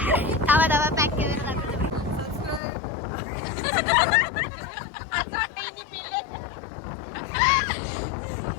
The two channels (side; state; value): right; drops out; at 2.6 s